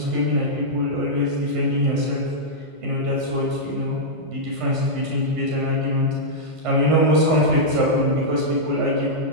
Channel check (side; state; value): left; late; 1.5 ms